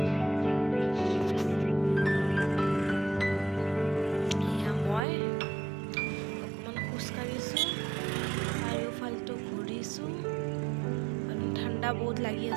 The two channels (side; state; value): left; drops out; at 5.1 s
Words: মই অকণমান খোজকাঢ়িছোঁ, চাৰিওফালটো ঘূৰিছোঁ, আৰু ঠাণ্ডা বহুত লাগি